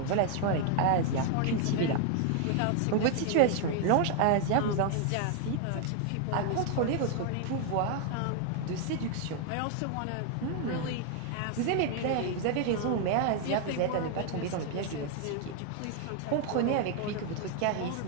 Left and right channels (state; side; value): different; both; correlation 0.00